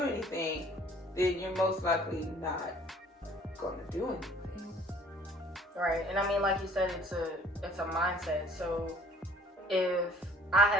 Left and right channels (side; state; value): both; normal; correlation 0.53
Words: anything, then you're most likely not going to do anything. Right. And I mean, like you said, it's a mindset. So if I